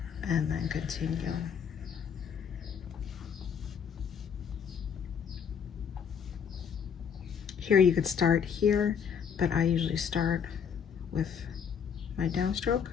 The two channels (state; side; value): quieter; right; 7.3 dB